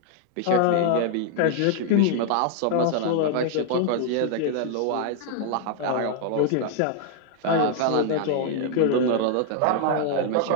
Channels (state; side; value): different; both; correlation 0.00